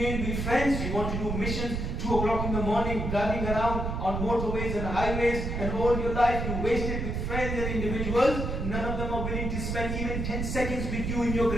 with friends, you want to do missions, 2 o'clock in the morning, driving around on motorways and highways, and all your life you wasted with friends and individuals. None of them are willing to spend even 10 seconds with you in your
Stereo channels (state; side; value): noise; right; rumble, 2 dB below the sound